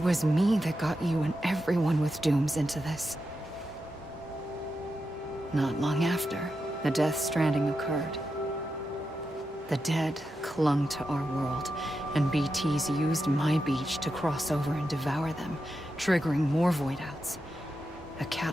me that got you and everyone with dooms into this. Not long after, the Death Stranding occurred. The dead clung to our world, and BTs used my beach to cross over and devour them, triggering more void outs. A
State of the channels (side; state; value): both; normal; correlation 0.88